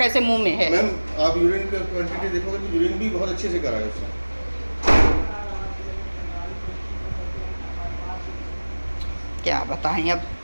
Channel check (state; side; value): inverted; both; correlation -1.00